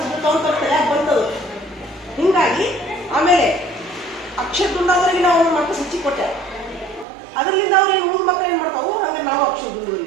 ಬರ್ತಾವ ಅಂತ ತಲೆಯಾಗ ಬಂತದು. ಹಿಂಗಾಗಿ ಆಮೇಲೆ ಅಕ್ಷರ ದುಂಡಾದ್ರಿಗೆ ನಾವು ಮಾರ್ಕ್ಸ್ ಹೆಚ್ಚಿಗೆ ಕೊಟ್ಟೆ. ಅದರಿಂದ ಅವ್ರು ಏನು ಮುಂದೆ ಮಕ್ಕಳು ಏನು ಮಾಡ್ತಾವು, ಹಂಗೆ ನಾವು ಅಕ್ಷರ ದುಂಡು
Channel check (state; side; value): drops out; left; at 7.1 s